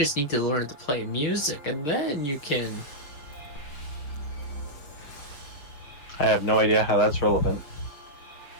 need to learn to play music, and then you can. I have no idea how that's relevant.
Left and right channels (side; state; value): right; late; 6.8 ms